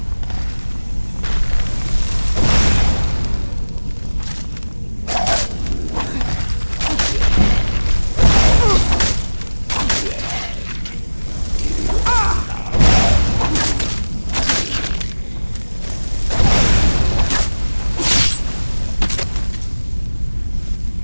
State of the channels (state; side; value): inverted; both; correlation -1.00